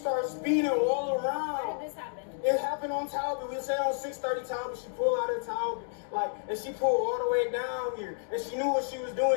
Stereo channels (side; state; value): right; silent; digital silence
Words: speeding all around. Where did this happen? It happened on Talbot. We said on 630 Talbot. She pulled out of Talbot, and she pulled all the way down here. And she knew what she was